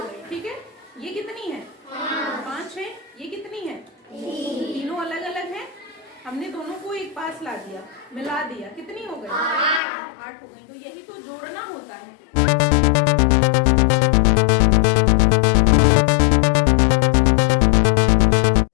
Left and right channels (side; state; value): right; drops out; at 9.8 s